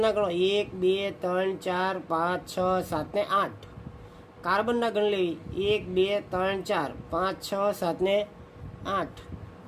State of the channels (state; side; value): identical; both; correlation 1.00